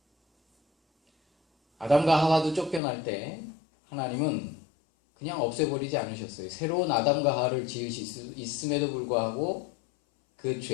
아담과 하와도 쫓겨날 때 하나님은 그냥 없애버리지 않으셨어요. 새로운 아담과 하와를 지으실 수 있음에도 불구하고 그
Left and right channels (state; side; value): drops out; right; at 2.8 s